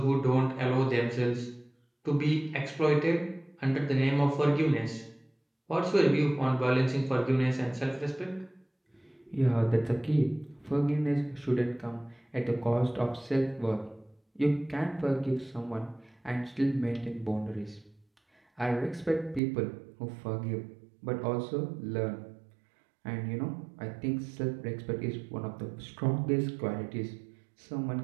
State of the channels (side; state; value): left; drops out; at 19.4 s